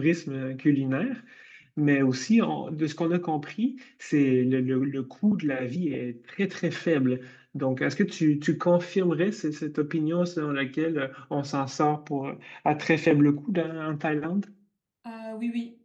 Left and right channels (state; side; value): identical; both; correlation 1.00